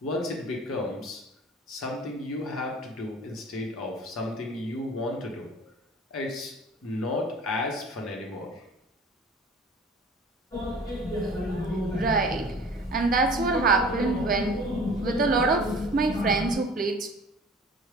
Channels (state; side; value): normal; both; correlation 0.45